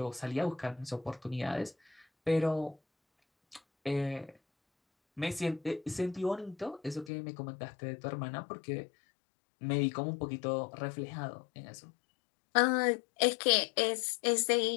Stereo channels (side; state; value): right; drops out; at 7.1 s